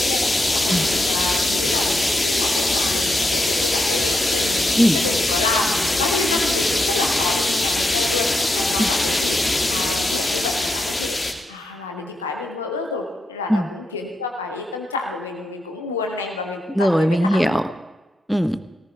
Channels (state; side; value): normal; both; correlation 0.84